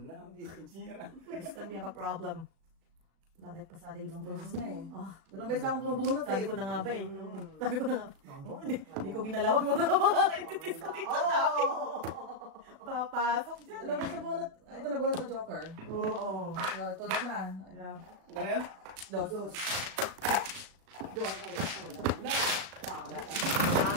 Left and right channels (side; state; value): left; late; 37 ms